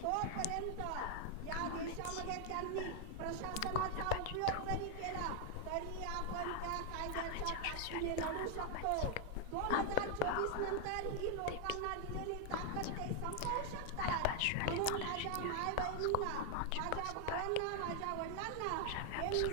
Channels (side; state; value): both; different; correlation 0.00